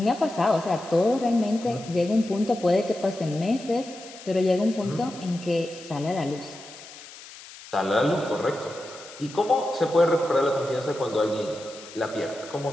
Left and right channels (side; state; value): left; noise; hiss, 17 dB below the sound